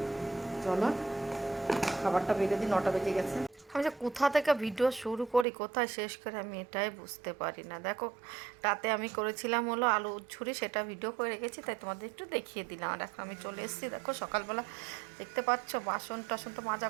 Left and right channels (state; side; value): drops out; left; at 5.5 s